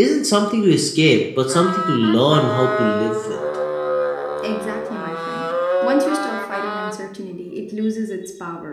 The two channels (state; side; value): identical; both; correlation 1.00